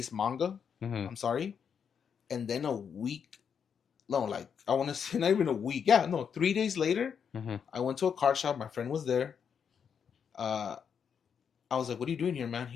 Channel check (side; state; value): right; quieter; 7.2 dB